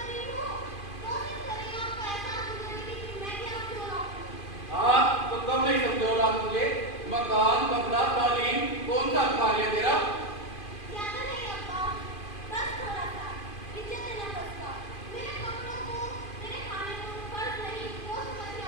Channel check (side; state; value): right; late; 2.5 ms